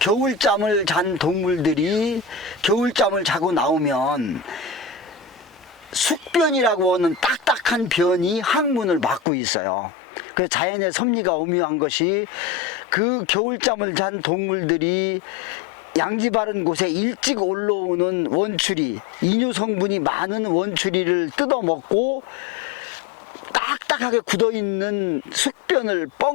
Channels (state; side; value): drops out; right; at 9.2 s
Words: 잔 동물들이 겨울잠을 자고 나오면 숙변이라고 하는 딱딱한 변이 항문을 막고 있어요. 그래서 자연의 섭리가 오묘한 것이, 그 겨울잠을 잔 동물들이 양지 바른 곳에 일찍 올라오는 원추리, 이뇨 성분이 많은 원추리를 뜯어먹고 딱딱하게 굳어있는 숙변을